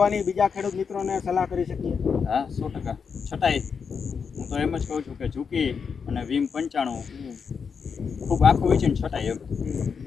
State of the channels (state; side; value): quieter; right; 6.1 dB